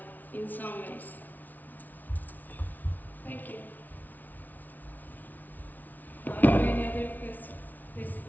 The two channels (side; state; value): right; late; 0.081 ms